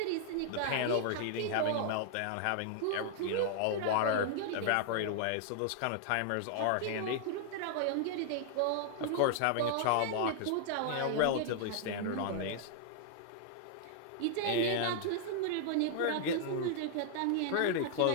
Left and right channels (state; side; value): different; both; correlation -0.01